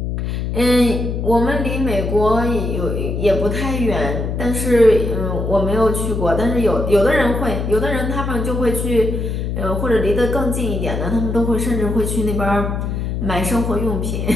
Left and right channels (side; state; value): left; noise; hum, 2 dB below the sound